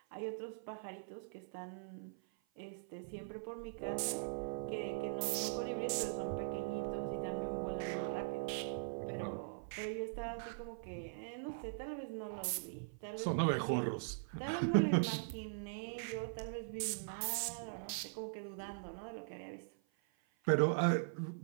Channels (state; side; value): silent; left; 50 dB below the other